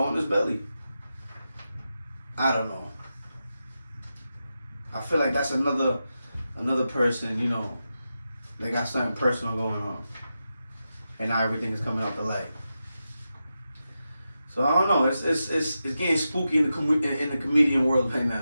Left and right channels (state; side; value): inverted; both; correlation -0.90